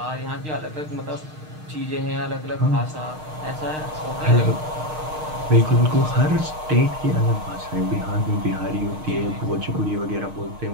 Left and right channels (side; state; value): left; late; 6.5 ms